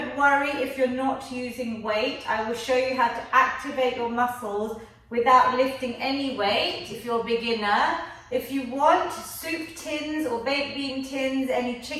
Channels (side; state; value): both; identical; correlation 1.00